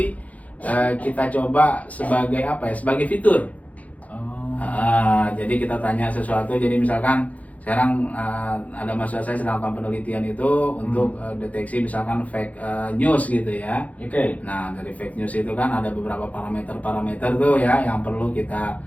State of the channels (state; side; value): late; right; 0.070 ms